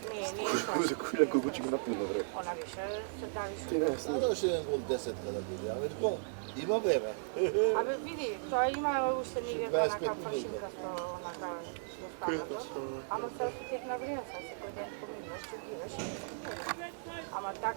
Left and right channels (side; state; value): left; silent; digital silence